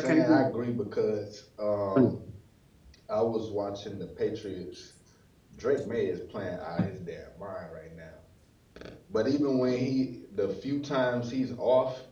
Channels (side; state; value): both; identical; correlation 1.00